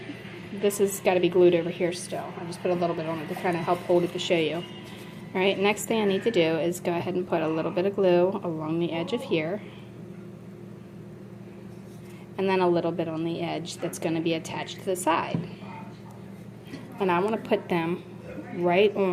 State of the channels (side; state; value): both; identical; correlation 1.00